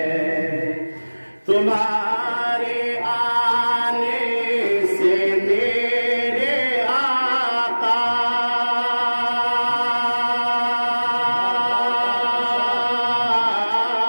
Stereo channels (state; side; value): inverted; both; correlation -1.00